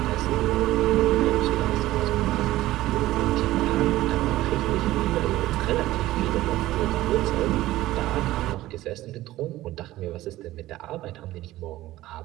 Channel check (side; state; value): left; quieter; 16.1 dB